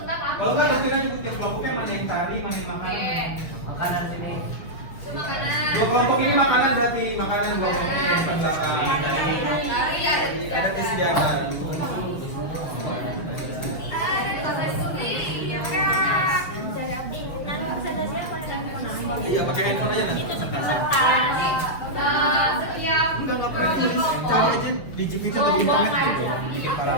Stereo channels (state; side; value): late; right; 6.5 ms